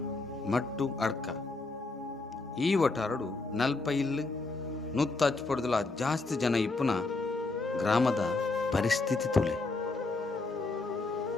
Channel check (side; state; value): right; quieter; 3.5 dB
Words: ಮಟ್ಟು ಅಡ್ಕ. ಈ ಒಟ್ಟಾರಡು ನಲ್ಪ ಇಲ್ಲು ನುತ್ತ ಹಚ್ಪಡ್ದಲ ಜಾಸ್ತಿ ಜನ ಇಪ್ಪುನ ಗ್ರಾಮದ ಪರಿಸ್ಥಿತಿ ತುಲೆ.